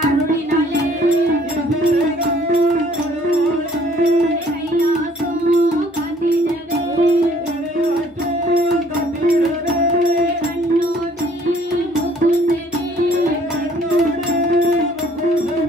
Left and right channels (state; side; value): normal; both; correlation 0.59